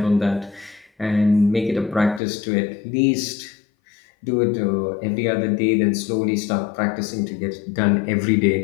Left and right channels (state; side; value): drops out; right; at 2.2 s